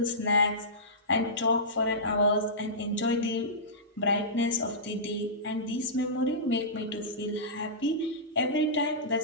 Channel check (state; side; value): normal; both; correlation -0.18